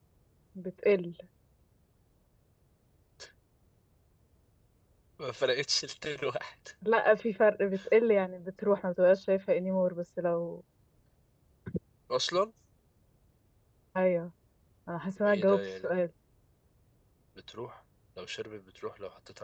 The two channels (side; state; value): both; identical; correlation 1.00